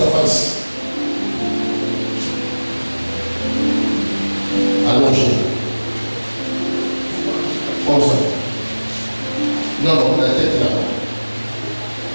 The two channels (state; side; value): inverted; both; correlation -1.00